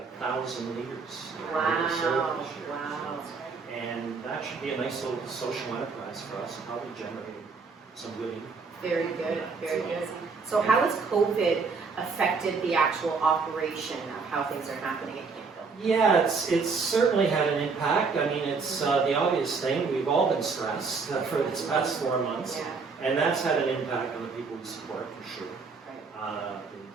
1,000 liters of maple syrup this year. Wow. And that should be a nice little social enterprise for us, probably generating some good income. Very good, very good. So how has COVID affected the actual operation of how things are happening at Camphill? Yeah, it's certainly had an impact. I mean, it's the obvious thing. We've all been stressed for this past 4 months, and that's had an impact on the people we support for sure. The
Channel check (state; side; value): quieter; left; 4.8 dB